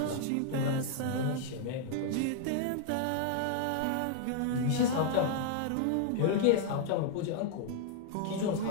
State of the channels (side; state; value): both; different; correlation -0.01